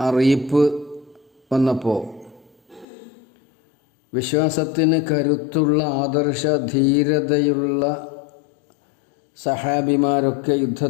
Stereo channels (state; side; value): drops out; right; at 2.9 s